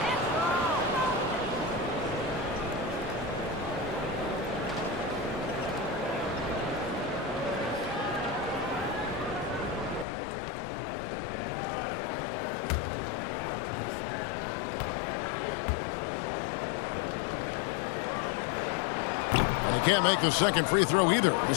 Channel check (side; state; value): right; drops out; at 10.1 s